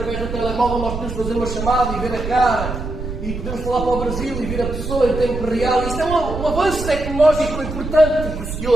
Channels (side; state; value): right; noise; rumble, 6 dB below the sound